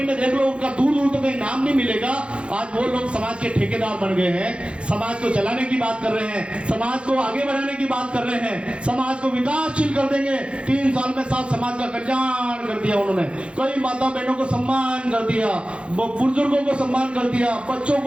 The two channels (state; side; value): late; left; 0.058 ms